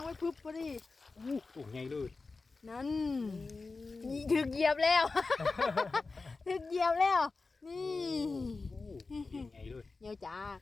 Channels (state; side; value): quieter; right; 3.9 dB